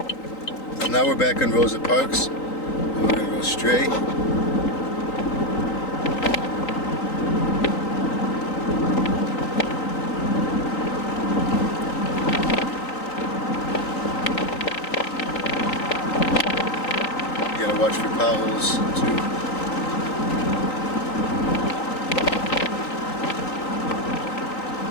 And now we're back on Rosa Parks, and we're gonna go straight. Watch for potholes too.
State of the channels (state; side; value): late; right; 3.9 ms